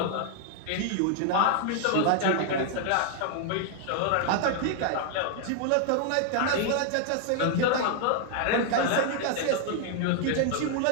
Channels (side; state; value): both; different; correlation 0.00